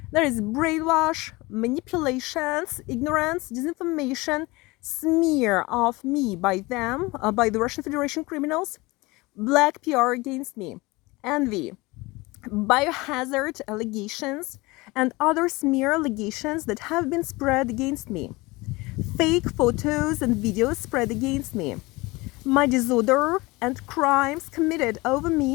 there is brainwash, manipulations, ignorance, disinformation, smear of me by them, by the Russian Federation criminals, black PR against me, envy, biohazard allegations, and other smear allegations that have been spread against me, fake photos and videos spread against me, my disorder and crimes committed over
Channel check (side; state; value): right; quieter; 22.8 dB